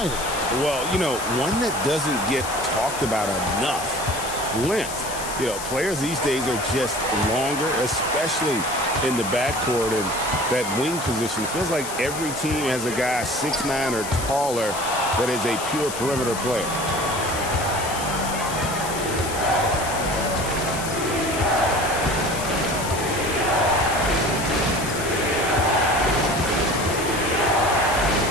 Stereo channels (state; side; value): noise; left; hiss, 8 dB below the sound